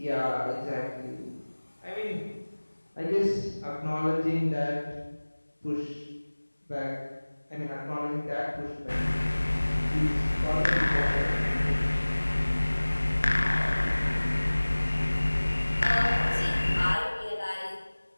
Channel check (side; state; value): both; inverted; correlation -1.00